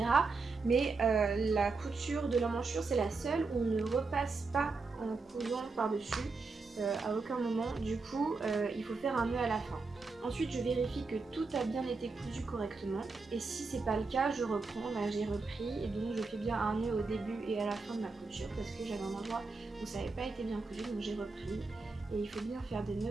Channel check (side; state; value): left; quieter; 4.0 dB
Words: Mais la couture de l'emmanchure, c'est la seule où on ne repasse pas en cousant par-dessus à aucun moment. Du coup, il faut faire un nœud à la fin. Ensuite, je vérifie que tout a bien été cousu correctement, et si c'est pas le cas, je reprends. Là, j'ai repris, et donc je fais bien un nœud au début et à la fin de ma couture parce que j'avais un endroit où ça n'avait pas été bien cousu, donc j'ai repris. Et il faut bien faire des